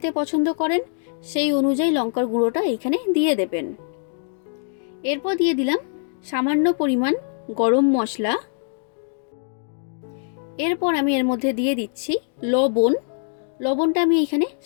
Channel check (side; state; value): right; silent; digital silence